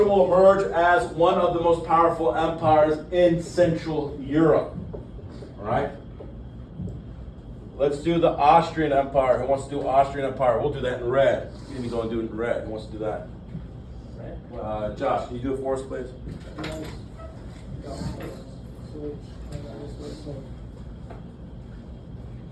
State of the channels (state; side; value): identical; both; correlation 1.00